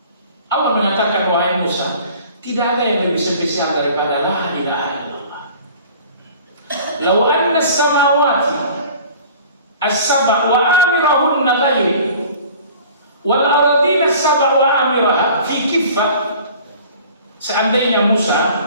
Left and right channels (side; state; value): both; inverted; correlation -0.47